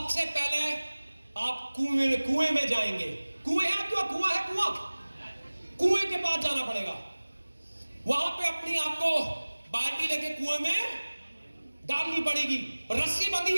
पहले आप कुएं में जाएंगे, कुएं है आपके, कुआं है, कुएं के पास जाना पड़ेगा, वहां पे अपनी आपको बाल्टी लेके कुएं में डालनी पड़ेगी। रस्सी बंधी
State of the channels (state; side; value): inverted; both; correlation -1.00